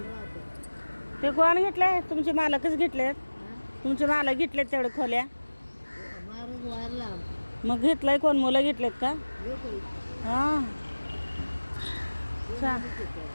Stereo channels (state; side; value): inverted; both; correlation -1.00